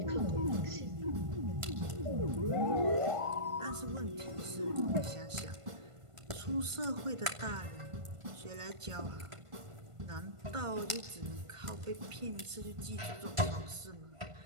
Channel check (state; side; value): late; left; 1.5 ms